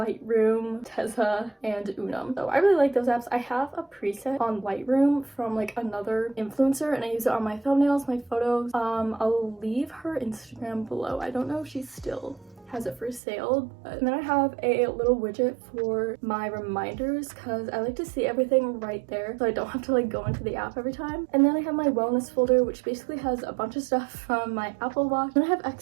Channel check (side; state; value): left; drops out; at 13.2 s